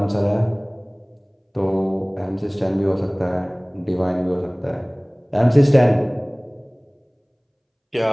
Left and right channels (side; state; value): both; identical; correlation 1.00